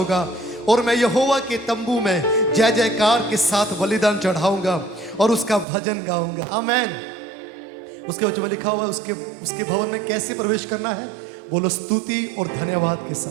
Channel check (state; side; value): drops out; left; at 5.7 s